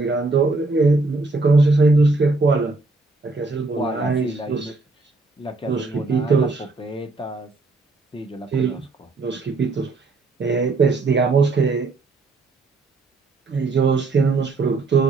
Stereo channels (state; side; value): quieter; left; 3.6 dB